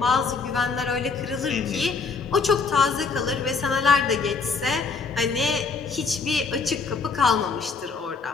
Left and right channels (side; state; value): right; quieter; 4.8 dB